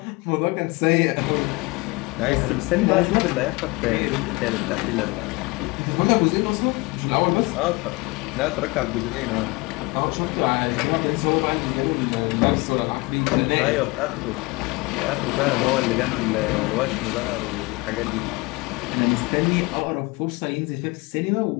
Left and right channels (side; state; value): right; quieter; 25.1 dB